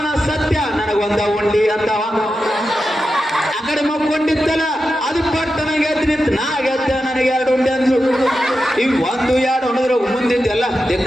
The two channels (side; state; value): both; normal; correlation 0.90